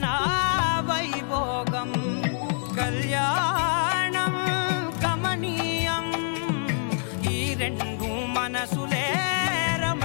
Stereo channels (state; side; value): silent; right; digital silence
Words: వైభోగం కళ్యాణం గమనీయం ఈ రెండు మనసులే